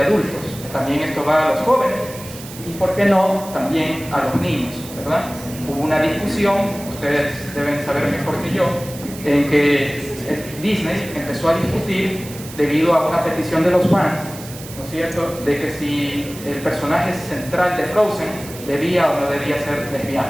adultos, también esto va a los jóvenes, y por qué no, también a los niños, ¿verdad? Hubo una discusión, ustedes deben saber mejor que yo, en que Disney empezó a discutir debido a una petición de los fans, ¿no es cierto?, de que si el personaje central de Frozen debía o no debía ser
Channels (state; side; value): noise; right; hiss, 15 dB below the sound